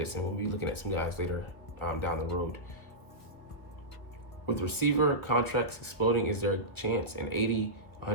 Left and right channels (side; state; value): right; late; 1.6 ms